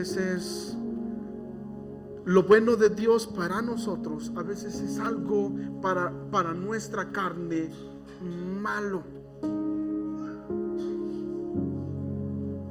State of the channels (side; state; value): both; identical; correlation 1.00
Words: es lo bueno de Dios para nosotros, a veces es algo para nuestra carne malo.